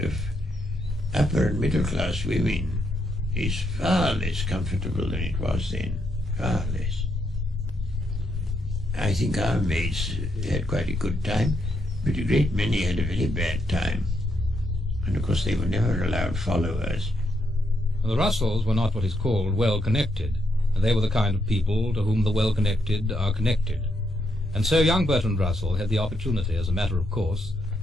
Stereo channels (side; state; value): both; normal; correlation 0.79